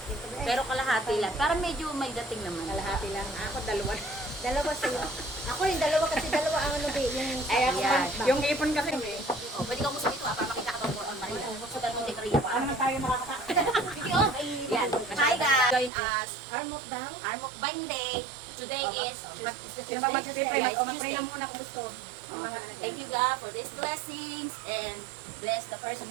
Pero kalahati lang. Para medyo may dating naman. kalahati lang. Ako, dalawa. Dalawa sa'yo. Ako rin dalawa kasi dalawa ang ano yung Ay, ako Ayan. pa. Yung ipon kasi. Oh, pwede ka umusap ito para makita ka ito on Maria. So, ganun din Maria pa. Ano na tayo makakata? Sige, oh. Yan. Hi guys. Join us. arm of down. Our mukbang day. Today is Sino mag-pray? Mag-pray lang muna kung gusto. Thank you God for these blessings and bless the person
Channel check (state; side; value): drops out; left; at 15.9 s